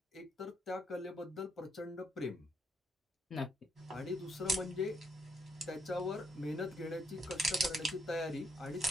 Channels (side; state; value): both; normal; correlation 0.74